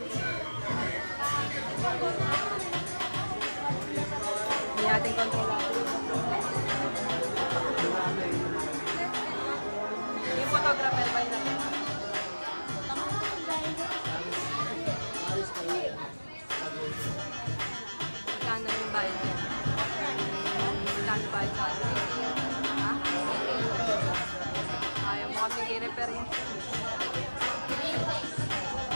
Hindi natin kontrolado. Yung photographer ba yun natin? Kano yung bayad niya? Kano bayad sa atin? Ha? Ayaw mo kami i-repair yun.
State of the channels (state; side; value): inverted; both; correlation -1.00